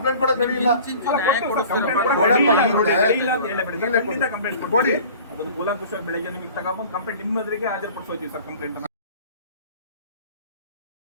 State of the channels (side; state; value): both; inverted; correlation -0.44